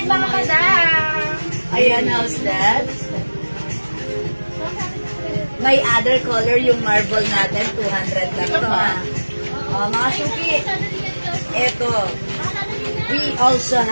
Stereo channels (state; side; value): inverted; both; correlation -1.00